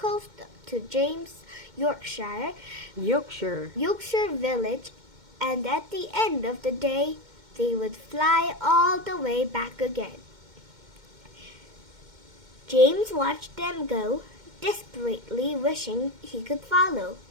to James, Yorkshire village, and at the end of the day, they would fly all the way back again. James watched them go, desperately wishing he could follow.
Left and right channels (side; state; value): left; late; 2.1 ms